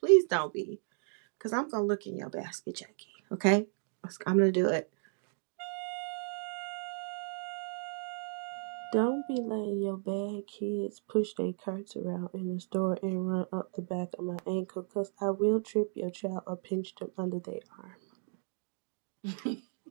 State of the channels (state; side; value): silent; left; digital silence